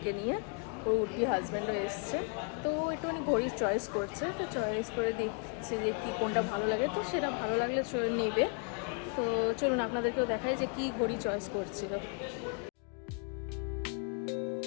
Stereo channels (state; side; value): quieter; right; 38.5 dB